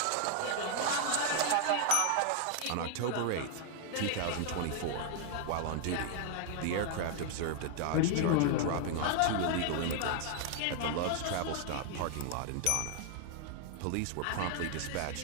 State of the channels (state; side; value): different; both; correlation 0.00